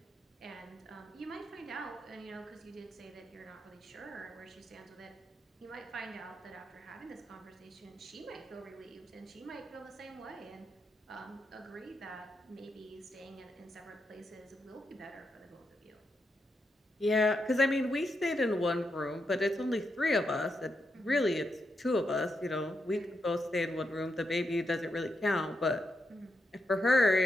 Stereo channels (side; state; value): both; normal; correlation 0.84